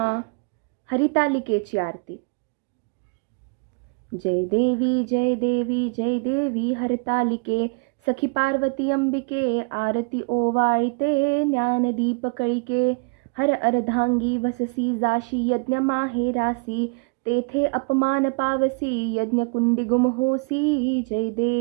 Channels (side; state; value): left; quieter; 32.8 dB